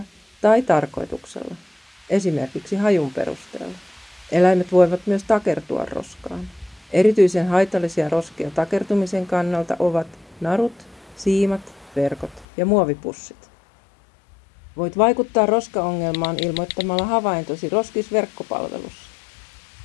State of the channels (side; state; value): right; drops out; at 12.5 s